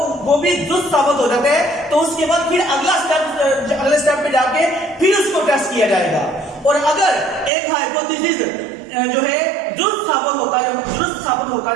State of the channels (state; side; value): drops out; left; at 7.5 s